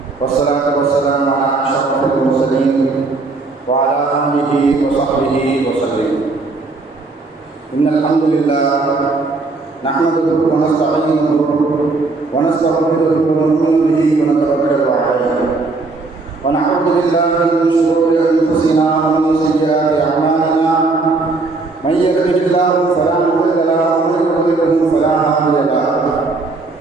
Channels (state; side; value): quieter; left; 3.7 dB